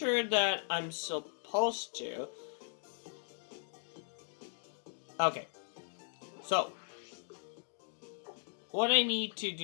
that I'm supposed to. Okay. So, what I need to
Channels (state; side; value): silent; right; digital silence